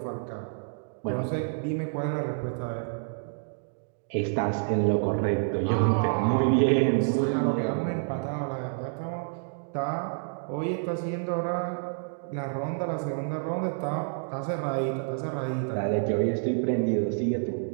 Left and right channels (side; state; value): left; silent; digital silence